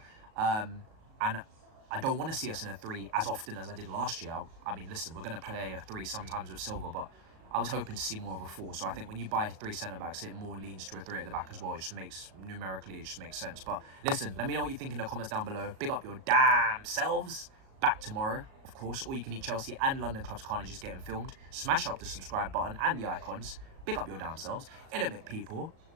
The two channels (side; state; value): left; late; 37 ms